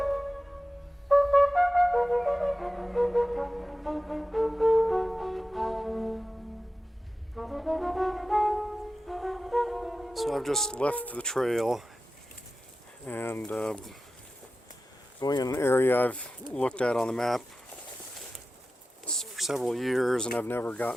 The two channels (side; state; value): both; normal; correlation 0.94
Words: I've just left the trail and going in an area I've looked at on the map for several years, and I've never